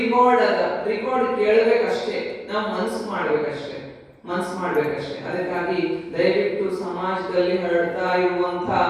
ರಿಕಾರ್ಡ್ ಕೇಳಬೇಕಷ್ಟೇ. ನಾವು ಮನಸ್ಸು ಮಾಡ್ಬೇಕಷ್ಟೇ. ಅದಕ್ಕಾಗಿ ದಯವಿಟ್ಟು ಸಮಾಜದಲ್ಲಿ ಹರಡ್ತಾ ಇರುವಂತ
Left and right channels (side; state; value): both; identical; correlation 1.00